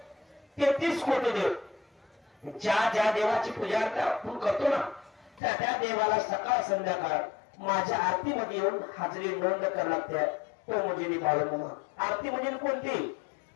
33 कोटी देव, ज्या ज्या देवाची पूजा आपण करतो ना त्या त्या देवाला सकाळ संध्याकाळ माझ्या आरतीमध्ये येऊन हाजरी नोंद करायला लागते. तो म्हणजे बाळूमामा. आरती म्हणजे कोणती,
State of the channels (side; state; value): right; drops out; at 5.4 s